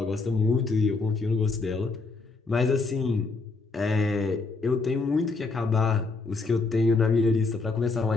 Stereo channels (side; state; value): right; quieter; 3.9 dB